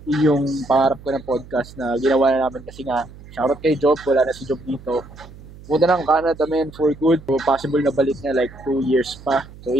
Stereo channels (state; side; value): noise; right; hum, 19 dB below the sound